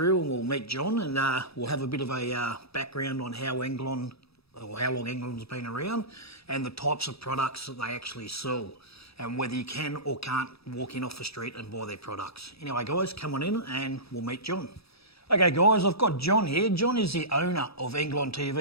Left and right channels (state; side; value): late; right; 0.77 ms